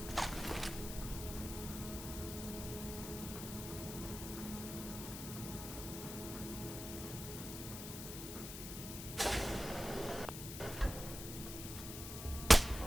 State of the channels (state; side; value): noise; left; hiss, 8 dB below the sound